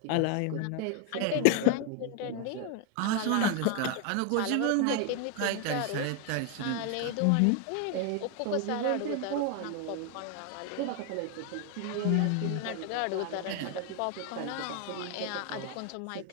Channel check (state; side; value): different; both; correlation 0.01